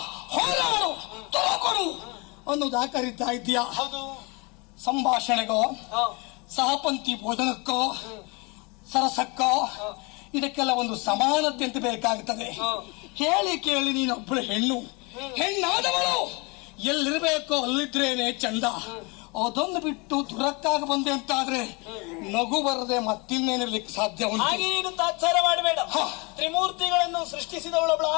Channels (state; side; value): quieter; right; 29.0 dB